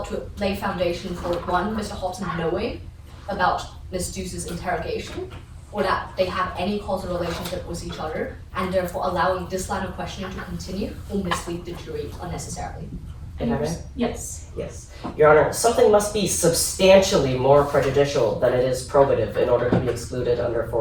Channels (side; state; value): both; identical; correlation 1.00